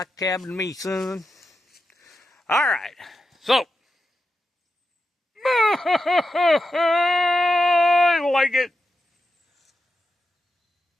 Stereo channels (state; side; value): normal; both; correlation 0.88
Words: a cabin to me, son. All right. So. I like it.